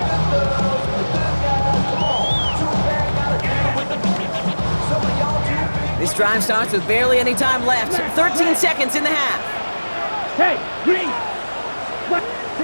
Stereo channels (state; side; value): inverted; both; correlation -1.00